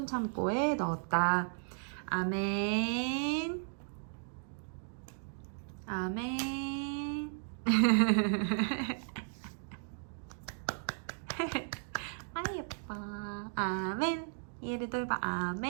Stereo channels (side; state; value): left; silent; digital silence